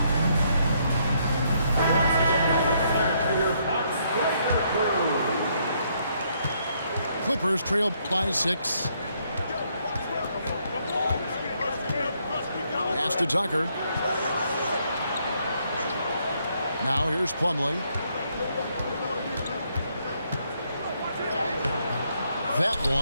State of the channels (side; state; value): both; inverted; correlation -0.72